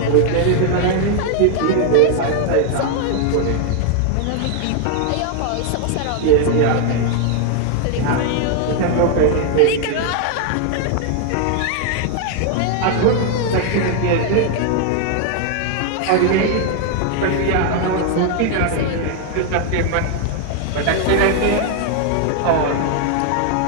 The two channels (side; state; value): both; different; correlation 0.00